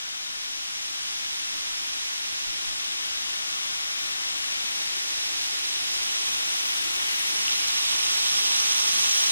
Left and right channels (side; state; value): both; inverted; correlation -0.84